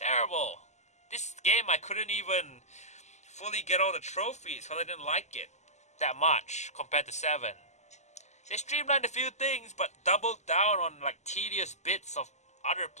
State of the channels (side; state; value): right; late; 0.33 ms